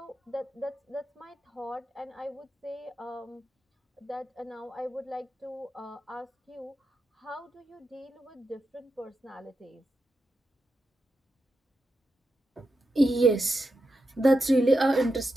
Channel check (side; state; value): both; normal; correlation 0.87